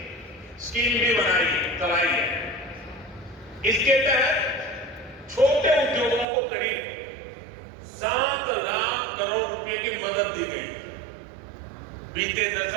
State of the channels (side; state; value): left; drops out; at 6.2 s